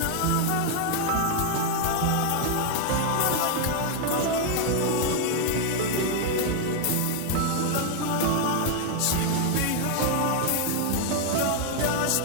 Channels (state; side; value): different; both; correlation 0.00